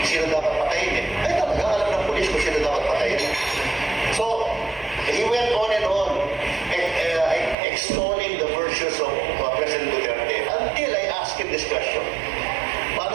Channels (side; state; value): left; drops out; at 7.6 s